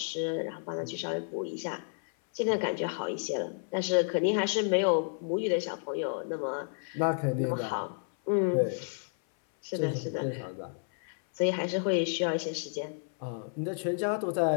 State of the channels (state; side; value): silent; right; 57 dB below the other